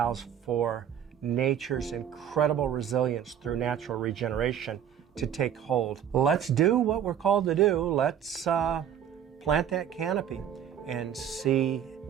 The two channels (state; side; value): quieter; left; 9.3 dB